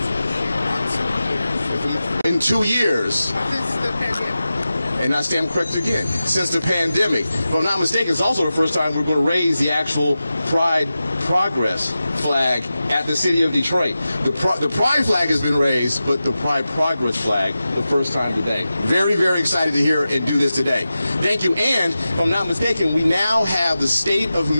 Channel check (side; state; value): both; inverted; correlation -0.93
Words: In 2 years. And I stand corrected again, since the pandemic. If I'm not mistaken, it's also the first time we're going to raise the actual Pride Progress flag at the city of Detroit. The Pride flag has been raised, but the Pride Progress flag, the first time today. Very, very excited to hear and do this today. Thank you. And if I'm not mistaken, we now have the state of